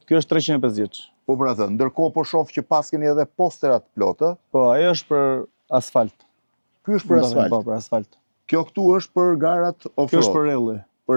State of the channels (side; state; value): both; inverted; correlation -1.00